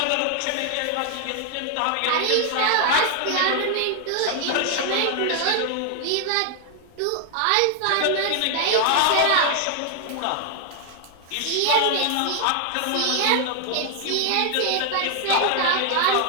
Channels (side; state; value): both; different; correlation 0.00